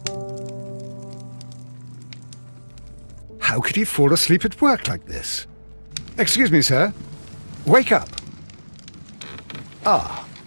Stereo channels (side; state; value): both; inverted; correlation -1.00